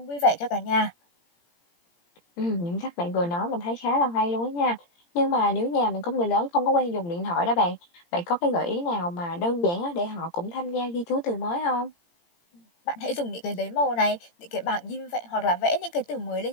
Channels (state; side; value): late; right; 17 ms